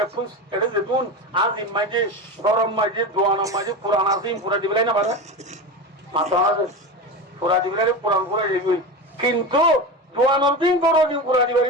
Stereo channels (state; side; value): normal; both; correlation 0.24